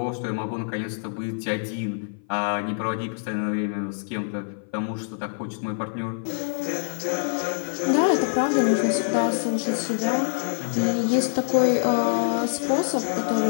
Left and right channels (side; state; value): right; silent; 56 dB below the other